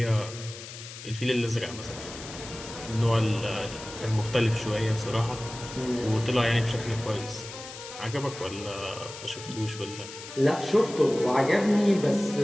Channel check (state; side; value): noise; left; hiss, 13 dB below the sound